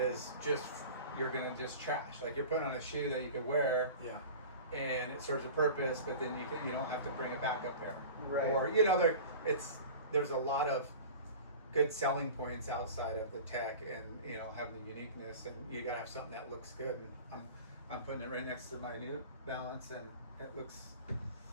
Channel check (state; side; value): inverted; both; correlation -0.37